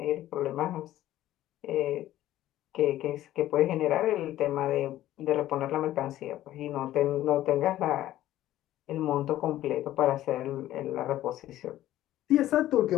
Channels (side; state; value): right; quieter; 13.9 dB